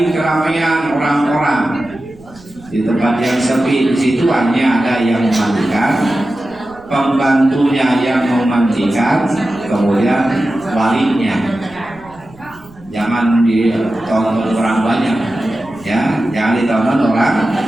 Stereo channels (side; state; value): right; noise; rumble, 24 dB below the sound